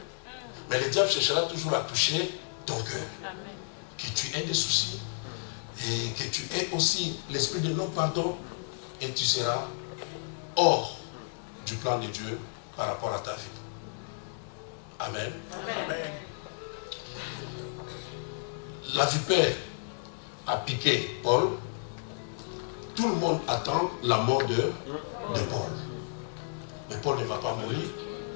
Mais le diable cherchera toujours à toucher ton cœur. Que tu aies des soucis et que tu aies aussi l'esprit de non-pardon et tu seras hors du plan de Dieu par rapport à ta vie. Amen. Amen. La vipère a piqué Paul. Tout le monde attend la mort de Paul. Mais Paul ne va pas mourir.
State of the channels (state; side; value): silent; right; digital silence